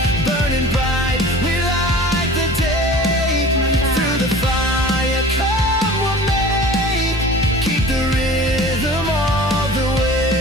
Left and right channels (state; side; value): normal; both; correlation 0.42